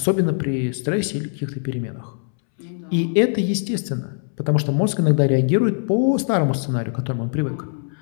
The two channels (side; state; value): right; silent; 64 dB below the other